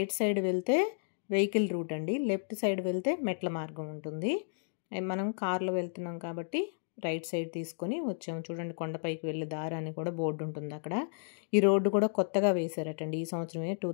సైడ్ వెళ్తే వెహికల్ రూట్ అండి, లెఫ్ట్ సైడ్ వెళ్తే మెట్ల మార్గం ఉంటుంది. మనం కార్లో వెళ్తున్నాం కాబట్టి రైట్ సైడ్ తీసుకొని వచ్చాము. చూడండి, కొండపైకి వెళ్ళే దారి అని కూడా బోర్డు ఉంటుంది అక్కడ. ఈ రోడ్డు కూడా కొత్తగా వేశారటండి ఈ సంవత్సరమే,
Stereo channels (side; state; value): right; silent; digital silence